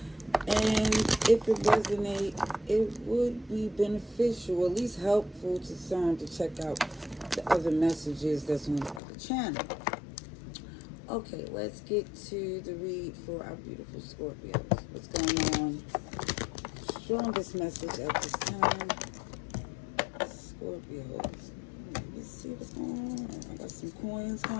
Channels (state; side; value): drops out; right; at 9.0 s